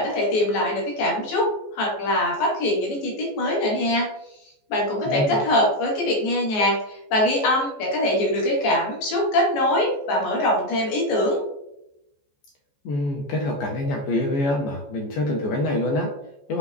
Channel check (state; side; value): late; right; 14 ms